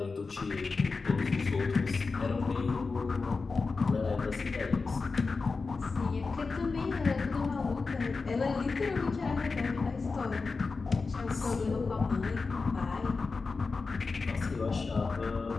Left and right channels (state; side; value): quieter; right; 4.3 dB